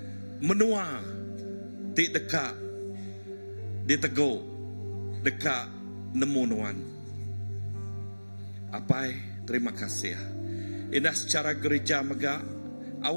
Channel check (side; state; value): both; inverted; correlation -1.00